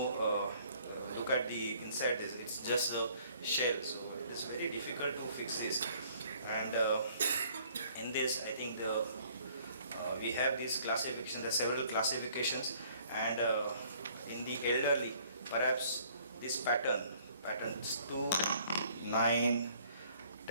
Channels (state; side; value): inverted; both; correlation -0.59